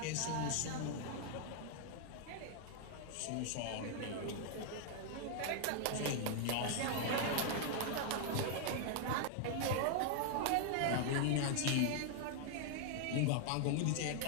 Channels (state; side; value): different; both; correlation 0.00